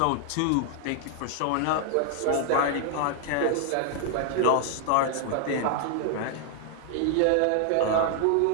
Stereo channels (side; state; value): both; different; correlation 0.00